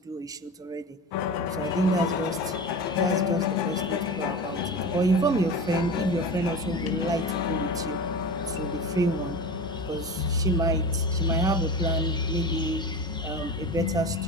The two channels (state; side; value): normal; both; correlation 0.29